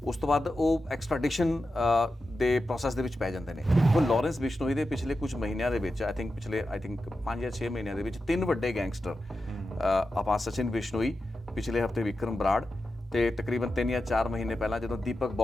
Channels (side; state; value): both; normal; correlation 0.91